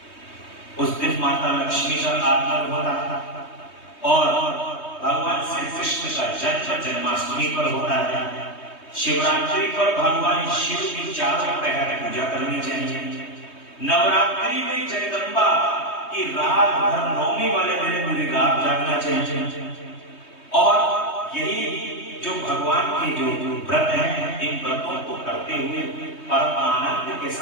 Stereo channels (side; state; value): right; late; 3.2 ms